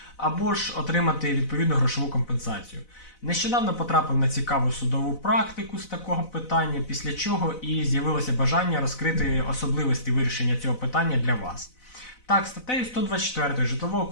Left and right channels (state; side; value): late; right; 4.0 ms